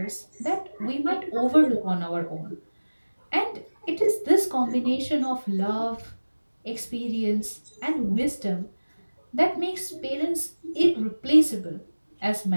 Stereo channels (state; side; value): inverted; both; correlation -1.00